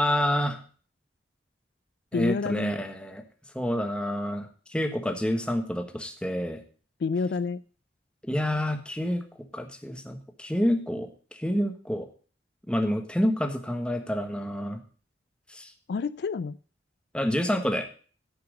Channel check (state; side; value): normal; both; correlation 0.85